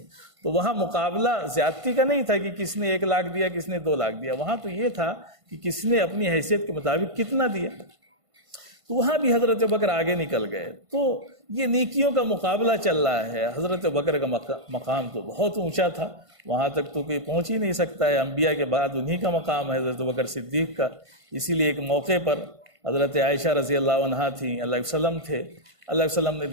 تو وہاں مقابلہ زیادتی کا نہیں تھا کہ کس نے 1 لاکھ دیا کس نے 2 لاکھ دیا، وہاں تو یہ تھا کہ کس نے اپنی حیثیت کے مطابق کتنا دیا۔ تو وہاں بھی حضرت ابوبکر آگے نکل گئے۔ تو یہ نیکیوں کا مقابلہ چل رہا ہے۔ حضرت ابوبکر کا مقام تو بہت اونچا تھا، وہاں تک تو کوئی پہنچ ہی نہیں سکتا ہے، انبیاء کے بعد انہی کا مقام ہے حضرت ابوبکر صدیق کا۔ اسی لیے ایک موقع پر حضرت عائشہ رضی اللہ عنہا تھیں، اللہ علیہ وسلم تھے، اللہ علیہ وسلم نے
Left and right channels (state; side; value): late; left; 1.5 ms